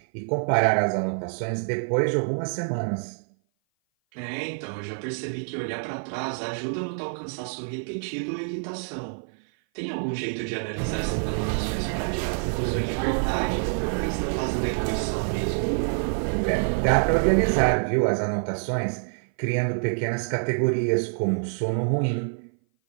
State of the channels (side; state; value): left; silent; 56 dB below the other